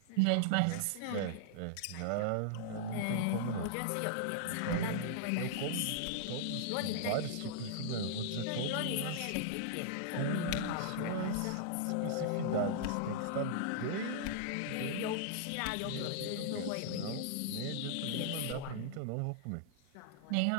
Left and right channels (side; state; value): both; different; correlation -0.01